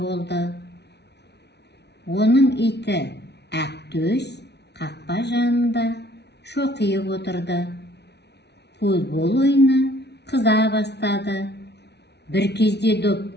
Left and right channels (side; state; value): right; late; 0.49 ms